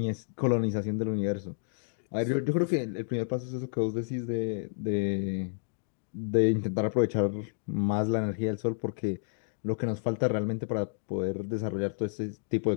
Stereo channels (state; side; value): silent; right; digital silence